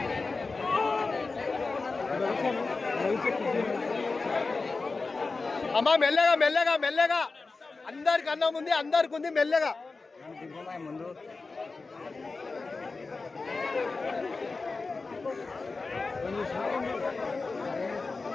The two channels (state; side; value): quieter; right; 3.9 dB